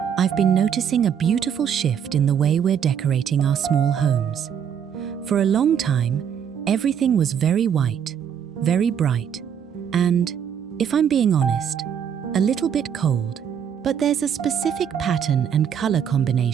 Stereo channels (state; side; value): quieter; left; 8.2 dB